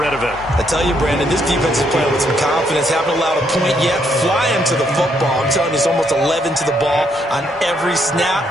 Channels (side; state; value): both; normal; correlation 0.73